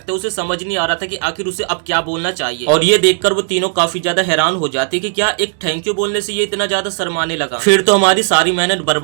उसे समझ नहीं आ रहा था कि आखिर उसे अब क्या बोलना चाहिए और ये देखकर वो तीनों काफी ज्यादा हैरान हो जाते कि क्या एक थैंक यू बोलने से ये इतना ज्यादा शर्माने लगा। फिर तो हमारी सारी मेहनत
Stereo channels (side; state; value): left; silent; 69 dB below the other